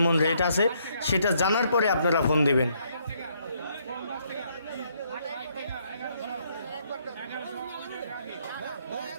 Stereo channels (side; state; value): both; inverted; correlation -0.71